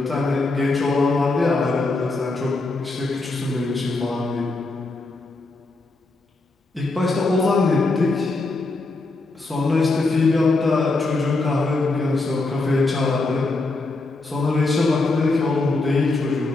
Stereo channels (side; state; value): right; quieter; 3.3 dB